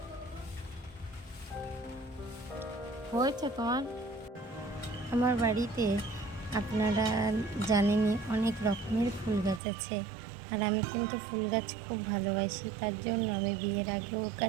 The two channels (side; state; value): left; drops out; at 9.6 s